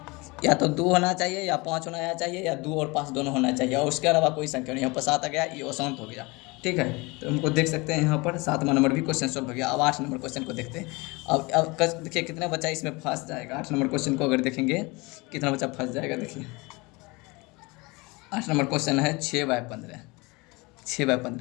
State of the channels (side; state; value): right; quieter; 25.4 dB